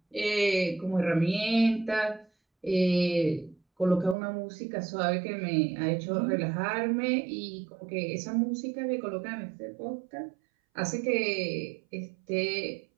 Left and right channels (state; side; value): drops out; left; at 4.2 s